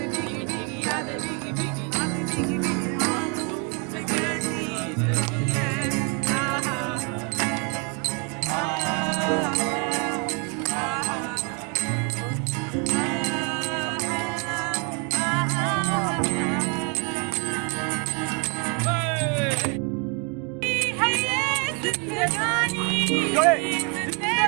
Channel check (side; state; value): left; quieter; 33.9 dB